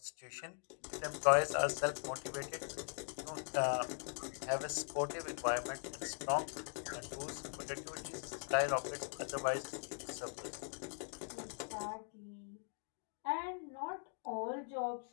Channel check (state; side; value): silent; right; 50 dB below the other